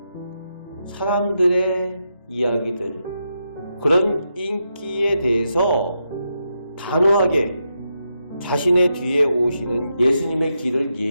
사람들의 이야기들, 그런 인기에 대해서 단호하게 자신의 뒤에 오시는 예수님의 길을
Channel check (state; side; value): inverted; both; correlation -0.84